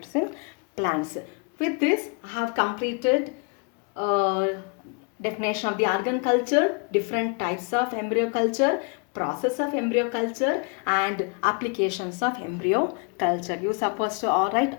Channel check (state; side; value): quieter; right; 34.0 dB